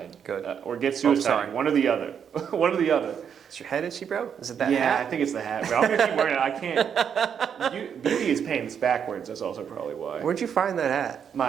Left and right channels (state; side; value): quieter; left; 7.7 dB